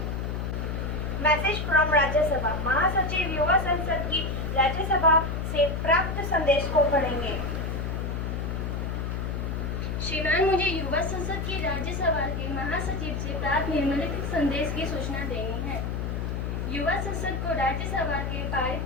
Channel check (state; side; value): noise; left; hum, 2 dB below the sound